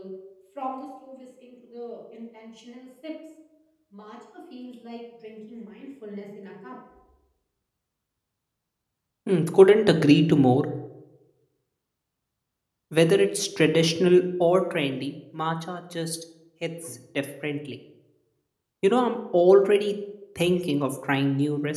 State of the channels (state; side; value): identical; both; correlation 1.00